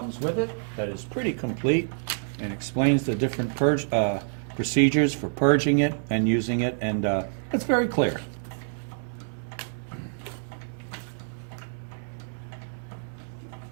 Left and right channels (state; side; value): silent; left; 60 dB below the other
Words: with it that is pretty complete and explains the different procedures for purging it and using it, and it's very clear.